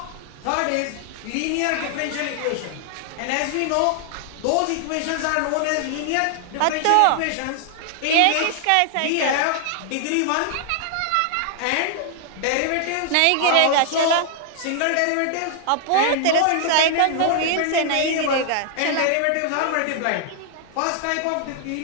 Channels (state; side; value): different; both; correlation 0.00